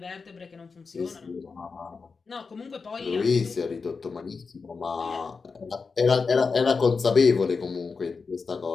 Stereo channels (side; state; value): right; quieter; 4.8 dB